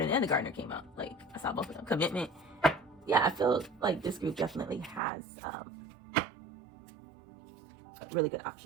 and the gardener came out. Like, I saw both of them. Commitment. Yeah, I feel like this group definitely has really good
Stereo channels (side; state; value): left; drops out; at 5.0 s